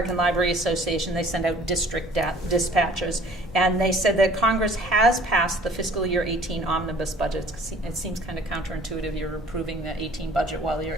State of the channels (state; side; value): normal; both; correlation 0.51